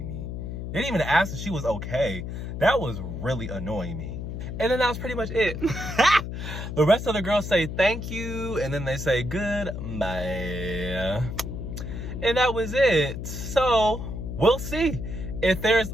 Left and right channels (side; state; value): left; noise; hum, 6 dB below the sound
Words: me. They didn't even ask if she was okay. That was really annoying me. And then that was pretty much it. The rest of the girls say thank you, and then they say goodbye. And that was it. So we'll see. If there's